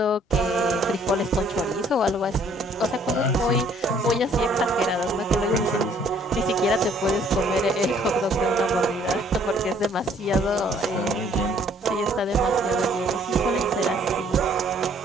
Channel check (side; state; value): both; normal; correlation 0.61